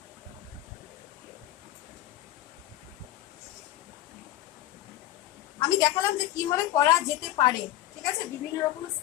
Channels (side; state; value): right; quieter; 14.3 dB